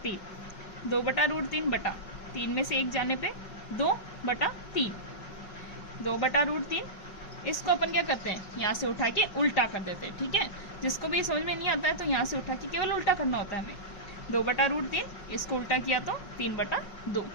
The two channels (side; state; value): right; late; 5.4 ms